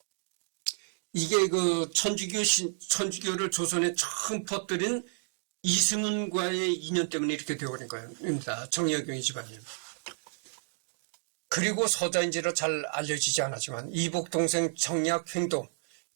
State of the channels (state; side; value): silent; left; digital silence